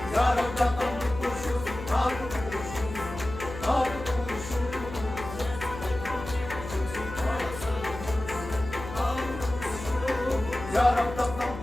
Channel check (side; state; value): left; noise; hum, 11 dB below the sound